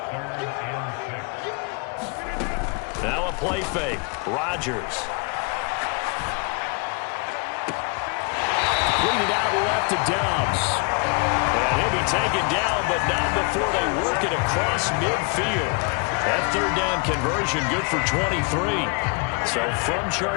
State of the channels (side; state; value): right; quieter; 32.2 dB